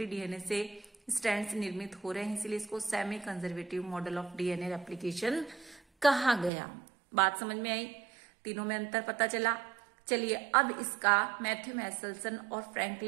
डीएनए से स्ट्रैंड्स निर्मित हो रहे हैं, इसलिए इसको semi conservative model of DNA replication कहा गया। बात समझ में आई, तीनों में अंतर पता चला। चलिए अब इसका मैथ्यू मैसेल्सन और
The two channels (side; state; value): left; drops out; at 6.5 s